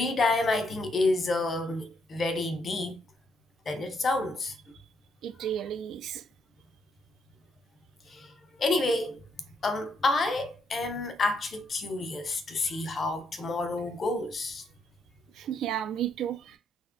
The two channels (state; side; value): normal; both; correlation 0.75